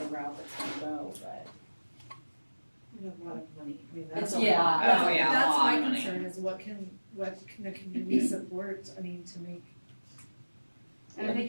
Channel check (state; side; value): inverted; both; correlation -1.00